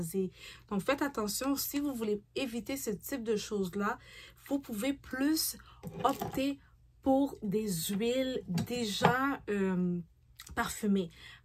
Donc, faites attention. Si vous voulez éviter ce type de choses-là, vous pouvez plus opter pour des huiles déjà parfumées.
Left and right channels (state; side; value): identical; both; correlation 1.00